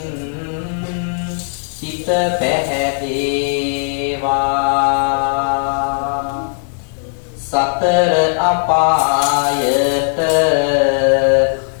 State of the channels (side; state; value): right; silent; digital silence